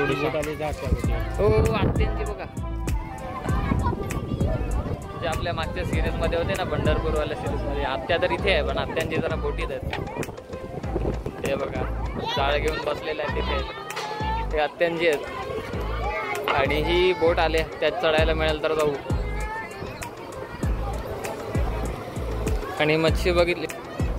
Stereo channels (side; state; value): both; identical; correlation 1.00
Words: हो आत्यांची बघा, जे आपल्या मागच्या सिरीज मध्ये होते ना, पंढरपूरवाल्या सिरीज मध्ये, आत्या तर इथे आहे पण आत्यांची जरा बोटीत आहेत. ते बघा जाळ घेऊन बसलेले आहे तिथे, ते आत्यांची आहेत. आणि ही बोट आले, त्यात चढायला मिळेल तर जाऊ. आणि मच्छी बघितली,